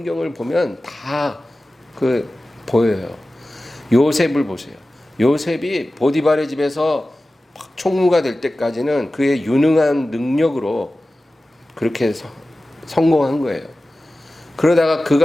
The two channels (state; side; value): normal; both; correlation 0.96